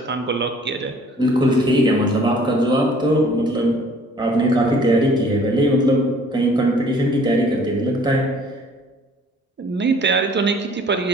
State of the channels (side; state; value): both; normal; correlation 0.55